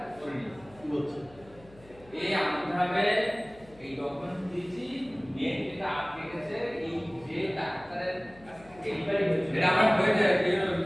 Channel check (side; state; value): left; noise; hum, 24 dB below the sound